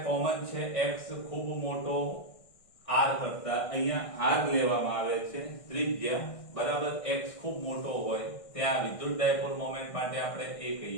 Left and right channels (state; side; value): late; right; 1.6 ms